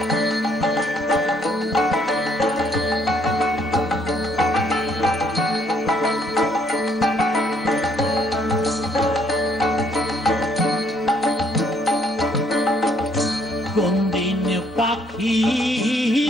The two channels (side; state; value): both; normal; correlation 0.67